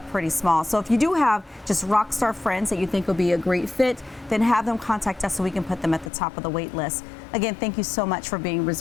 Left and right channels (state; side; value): drops out; right; at 6.1 s